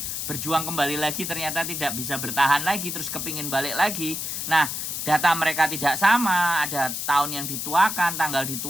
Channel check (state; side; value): noise; left; hiss, 4 dB below the sound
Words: berjuang kembali lagi ternyata tidak bisa bertahan lagi terus kepingin balik lagi. Nah, data mereka tidak sama, ada tahun yang dituakan, tanggal